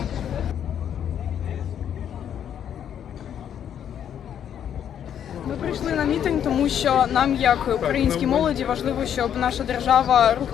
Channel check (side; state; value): right; quieter; 9.3 dB